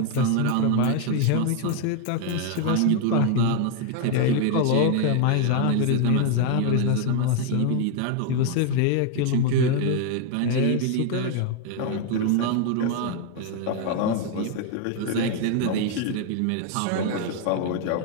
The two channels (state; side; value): different; both; correlation 0.01